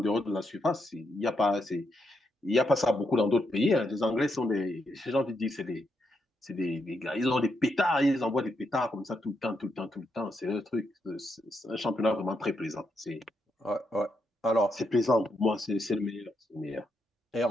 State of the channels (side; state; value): both; normal; correlation 0.81